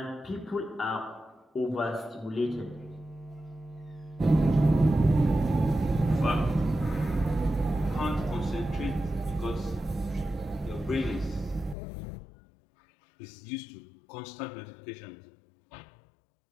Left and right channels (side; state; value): right; drops out; at 11.8 s